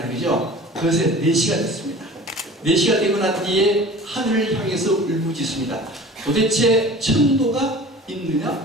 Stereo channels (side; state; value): both; normal; correlation 0.41